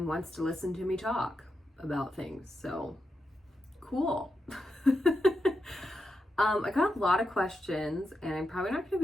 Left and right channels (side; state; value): both; normal; correlation 0.86